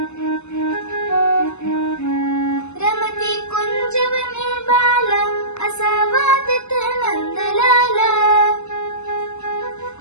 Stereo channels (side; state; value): right; late; 0.82 ms